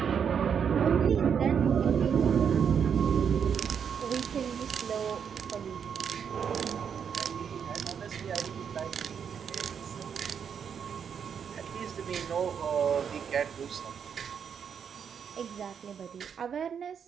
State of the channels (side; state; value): left; quieter; 7.4 dB